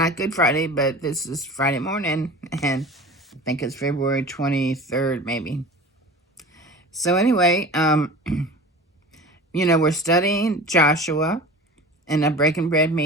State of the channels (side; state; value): both; normal; correlation 0.37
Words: Good Friday, but this is Friday morning, and I think it's February 23rd, maybe. So anyway, we're studying Joshua in a Breaking Bread